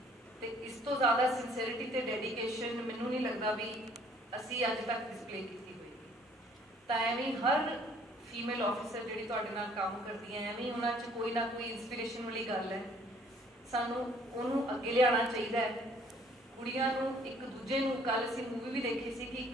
ਤੇ ਇਸ ਤੋਂ ਜ਼ਿਆਦਾ ਸਿੰਸੀਅਰਿਟੀ ਤੇ ਡੈਡੀਕੇਸ਼ਨ ਮੈਨੂੰ ਨਹੀਂ ਲੱਗਦਾ ਵੀ ਅਸੀਂ ਅੱਜ ਤੱਕ ਡਿਸਪਲੇ ਕੀਤੀ ਹੋਏਗੀ। ਤਾਂ ਐਵੇਂ ਹਰ ਫੀਮੇਲ ਆਫਿਸਰ ਜਿਹੜੀ ਤੁਹਾਡੇ ਨਾਲ ਕੰਮ ਕਰਦੀ ਹੈ ਐਵੇਂ ਉਹਨਾਂ 'ਚ ਕੋਈ ਨਾ ਕੋਈ ਇਨਸਪੀਰੇਸ਼ਨ ਵਾਲੀ ਗੱਲ ਹੈ, ਸਾਨੂੰ ਉਹਨੂੰ ਅੱਗੇ ਲਿਆਉਣਾ ਚਾਹੀਦਾ ਹੈ। ਕੁੜੀਆਂ ਨੂੰ ਇੱਕ ਦੂਜੇ ਨੂੰ, ਕੱਲ ਅਸੀਂ ਮੂਵੀ ਵੀ ਦੇਖੀ ਸੀ ਕਿ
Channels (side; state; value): both; normal; correlation 0.59